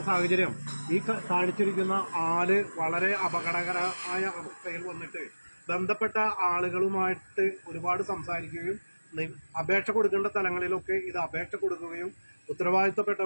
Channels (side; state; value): both; inverted; correlation -1.00